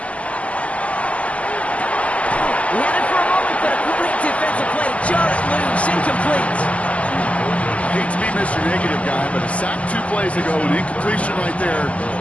He had it for a moment, but a great defensive play. Jar it loose, incomplete. Hate to be Mr. Negative guy, but a sack 2 plays ago, an incompletion right there.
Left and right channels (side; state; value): right; late; 0.066 ms